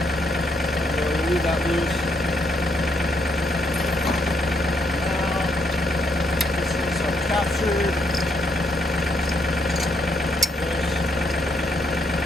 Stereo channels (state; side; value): normal; both; correlation 0.75